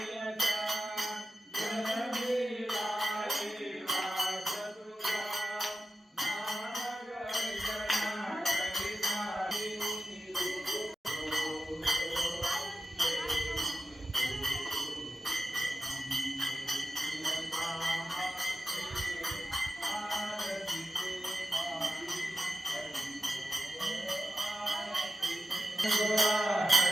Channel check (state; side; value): normal; both; correlation 0.91